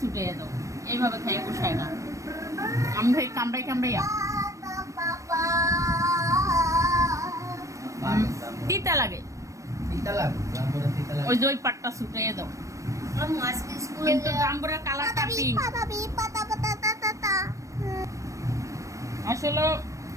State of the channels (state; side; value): late; left; 0.15 ms